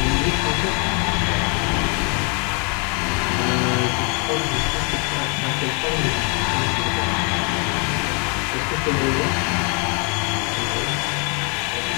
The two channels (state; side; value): quieter; right; 35.3 dB